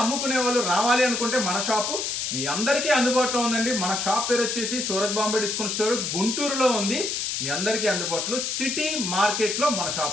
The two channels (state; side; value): noise; left; hiss, 2 dB below the sound